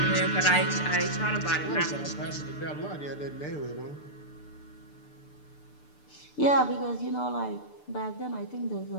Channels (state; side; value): late; right; 6.8 ms